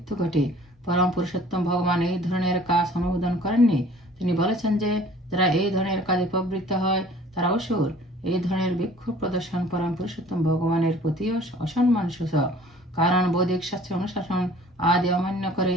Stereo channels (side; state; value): both; normal; correlation 0.51